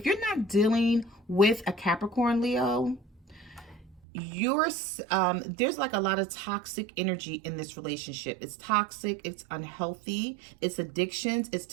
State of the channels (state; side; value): drops out; left; at 4.0 s